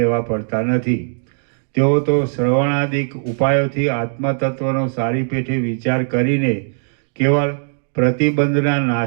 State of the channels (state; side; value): silent; left; digital silence